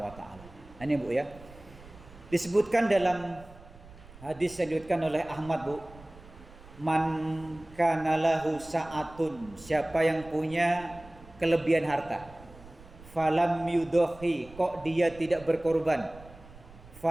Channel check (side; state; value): right; noise; rumble, 20 dB below the sound